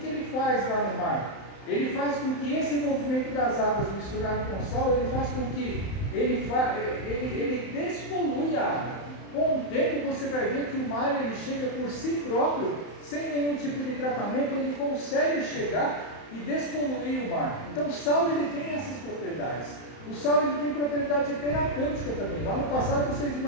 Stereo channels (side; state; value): right; late; 31 ms